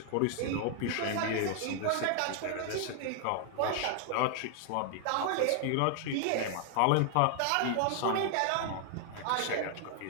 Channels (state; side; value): different; both; correlation 0.00